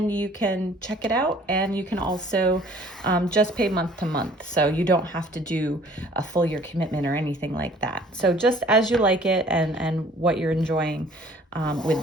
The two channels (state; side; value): normal; both; correlation 0.54